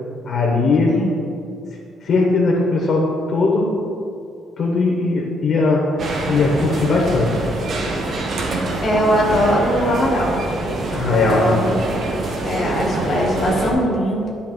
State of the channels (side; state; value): both; normal; correlation 0.71